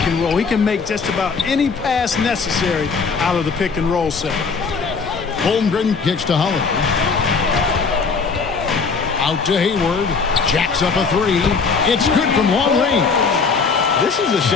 and roll. He can make just about any pass necessary out of the pick and roll set. Holmgren kicks to Holiday. Out to Hayward. Jacks up a three. It's good from long range. This is a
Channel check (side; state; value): right; quieter; 5.0 dB